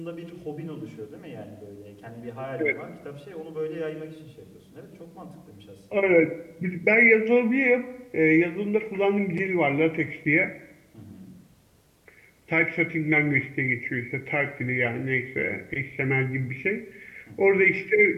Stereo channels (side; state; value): both; identical; correlation 1.00